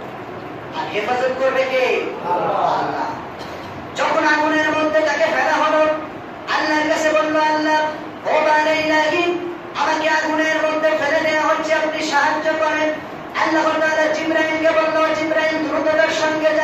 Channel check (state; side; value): identical; both; correlation 1.00